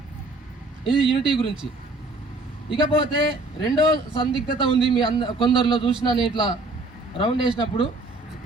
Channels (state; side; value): quieter; left; 3.0 dB